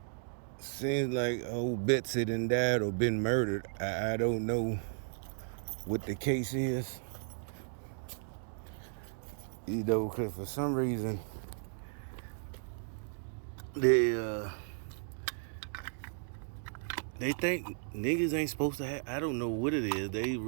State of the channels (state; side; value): silent; left; digital silence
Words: seems like old Betsy done died or been murdered. I don't know what the case is, because for some reason they they think niggas ain't supposed to have. I don't know what it is. They